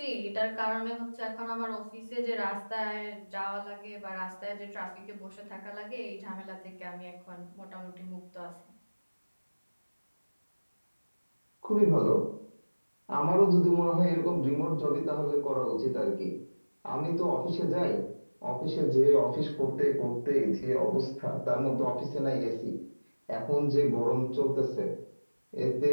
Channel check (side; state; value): both; inverted; correlation -1.00